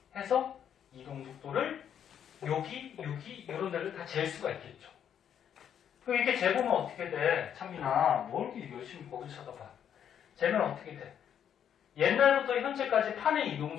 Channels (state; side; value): quieter; right; 9.0 dB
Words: 해서 이동 속도를 여기 이런 데를 다 잴 수가 있겠죠. 그럼 이렇게 재보면 어떻게 돼? 찬민아, 뭘 이렇게 열심히 거기 쳐다봐. 재면 어떻게 돼? 옛날부터 현재까지 판의 이동